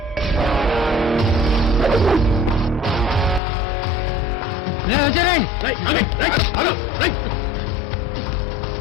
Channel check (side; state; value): right; drops out; at 3.4 s